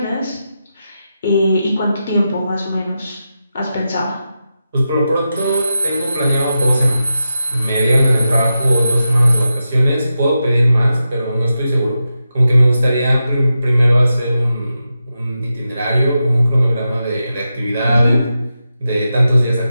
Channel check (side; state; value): both; inverted; correlation -0.89